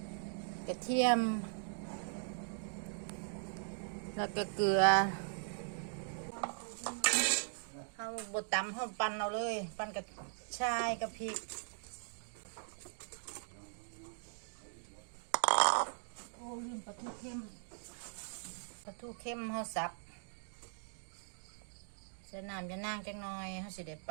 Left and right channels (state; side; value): silent; left; digital silence